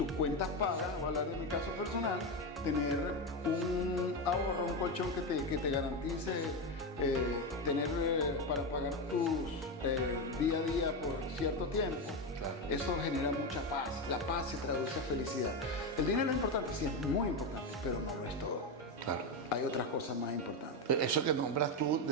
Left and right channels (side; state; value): both; normal; correlation 0.12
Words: cuentas pagas, voy a hablar de mi caso personal, tener un ahorro, un colchón que te garantice tener para pagar tus día a día por cierto tiempo. Eso genera mucha paz. La paz se traduce a felicidad. El dinero es importante, sí, es muy importante, pero no lo es todo. Claro. Hay otras cosas más importantes. Eso que nombras tú